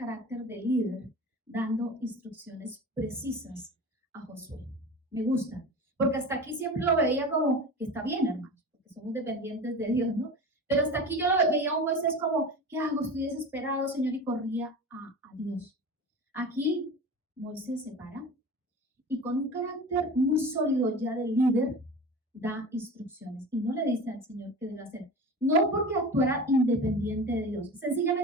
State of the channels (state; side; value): normal; both; correlation 0.33